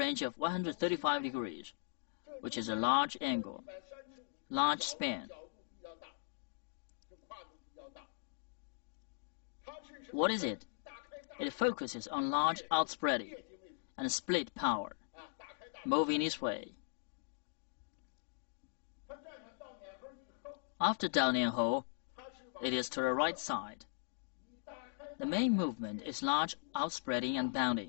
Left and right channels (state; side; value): silent; right; digital silence